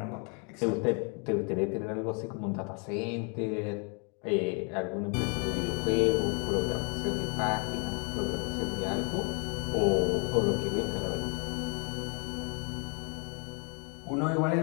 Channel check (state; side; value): quieter; right; 37.0 dB